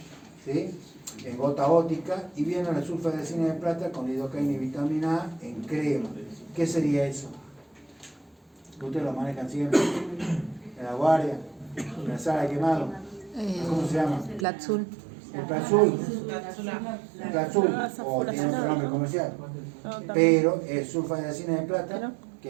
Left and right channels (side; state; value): left; drops out; at 14.5 s